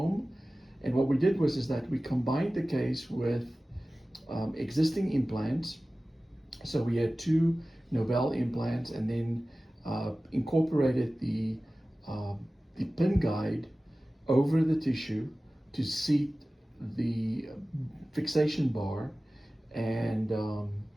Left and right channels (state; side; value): normal; both; correlation 0.97